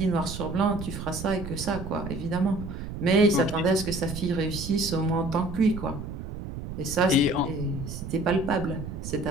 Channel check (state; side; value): noise; right; rumble, 8 dB below the sound